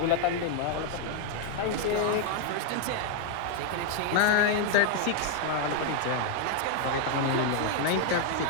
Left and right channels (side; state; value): both; different; correlation 0.00